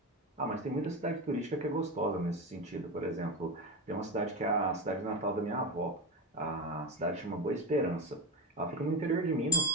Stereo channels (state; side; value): normal; both; correlation 0.20